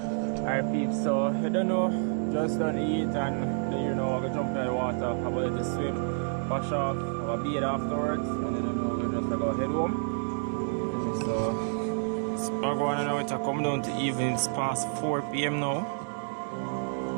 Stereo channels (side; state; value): left; silent; digital silence